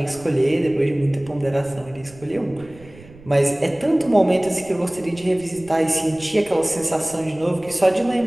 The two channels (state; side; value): noise; right; rumble, 21 dB below the sound